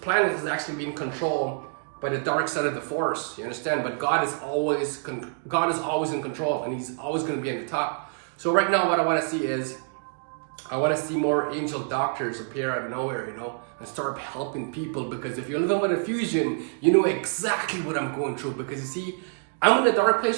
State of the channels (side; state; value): left; silent; 60 dB below the other